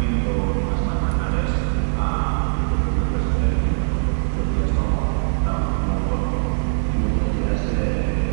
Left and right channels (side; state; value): left; silent; digital silence